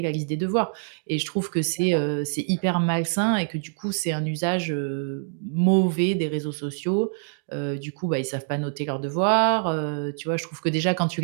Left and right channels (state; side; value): silent; left; digital silence